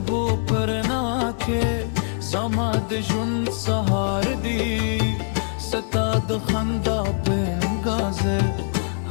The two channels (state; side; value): silent; right; digital silence